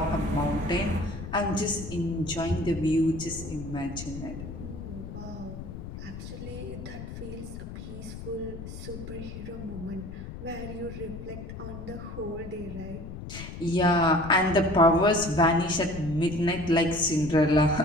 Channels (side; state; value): left; noise; rumble, 10 dB below the sound